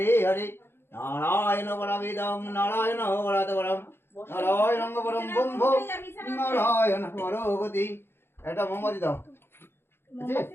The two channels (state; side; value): late; right; 0.11 ms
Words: হরে নারায়ণ পরমিদং নারায়ণ পরম নারায়ণ পরম ব্রহ্ম নারায়ণ পরগতি। এটা মোমবাতি দাও। মোমবাতি